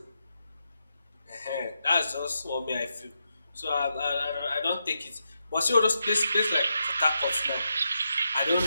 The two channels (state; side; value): inverted; both; correlation -0.85